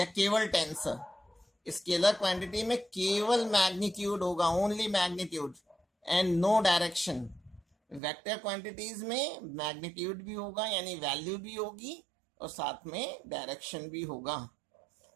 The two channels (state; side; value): drops out; left; at 8.0 s